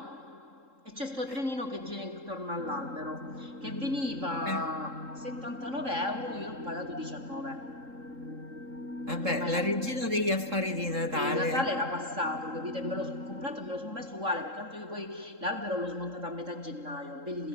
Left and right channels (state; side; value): late; left; 3.7 ms